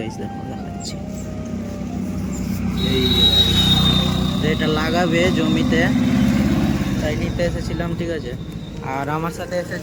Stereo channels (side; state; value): both; identical; correlation 1.00